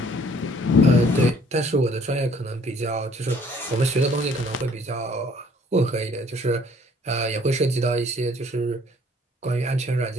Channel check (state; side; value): normal; both; correlation 0.59